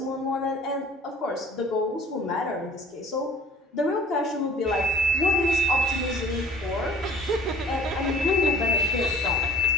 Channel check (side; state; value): both; normal; correlation 0.51